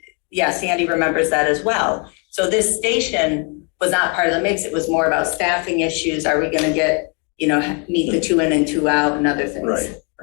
yeah, Sandy remembers that as well. So this station was not part of the mix. It was more about staffing issues. Are we going to get, meet the 2 in and 2 out and other things?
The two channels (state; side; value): quieter; right; 35.5 dB